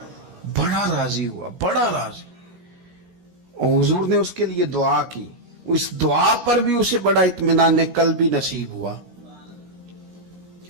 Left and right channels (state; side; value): late; left; 17 ms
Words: بڑا راضی ہوا، بڑا راضی، اور حضور نے اس کے لیے دعا کی، اس دعا پر بھی اسے بڑا اطمینان قلبی نصیب ہوا۔